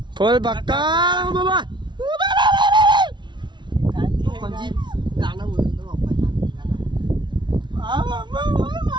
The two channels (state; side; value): late; left; 0.22 ms